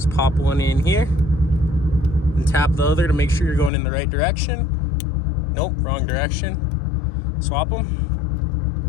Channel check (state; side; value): drops out; right; at 3.7 s